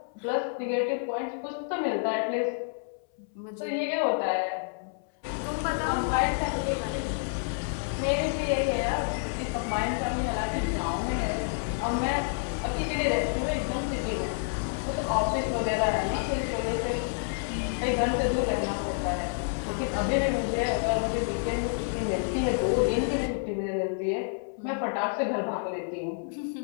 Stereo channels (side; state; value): right; silent; 59 dB below the other